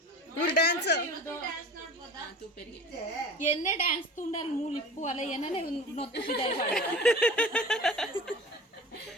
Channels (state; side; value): normal; both; correlation 0.37